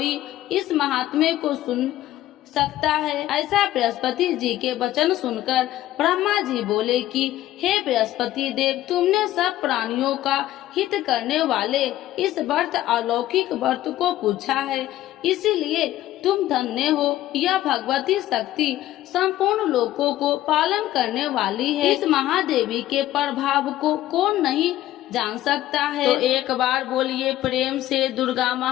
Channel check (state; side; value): quieter; right; 14.3 dB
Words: इस महात्म्य को सुन सकता है। ऐसा बृहस्पति जी के वचन सुनकर ब्रह्मा जी बोले कि हे बृहस्पति देव, तुमने सब प्राणियों का हित करने वाले इस व्रत अलौकिक व्रत को पूछा है, इसीलिए तुम धन्य हो। यह भगवती शक्ति संपूर्ण लोकों को पालन करने वाली है। इस महादेवी के प्रभाव को कौन नहीं जान सकता है। तो एक बार बोलिए प्रेम से दुर्गा